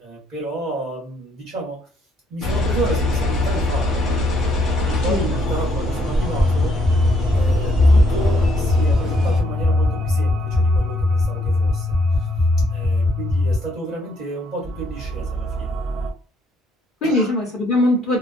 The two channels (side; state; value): both; normal; correlation 0.72